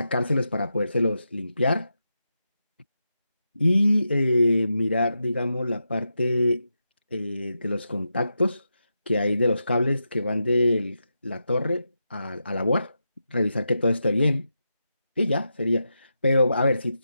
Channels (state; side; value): inverted; both; correlation -0.88